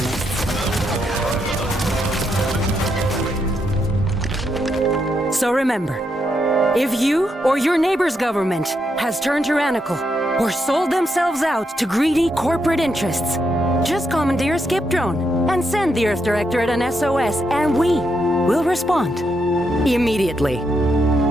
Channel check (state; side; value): normal; both; correlation 0.80